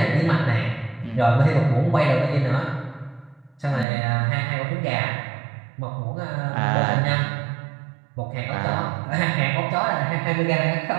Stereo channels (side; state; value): left; drops out; at 3.9 s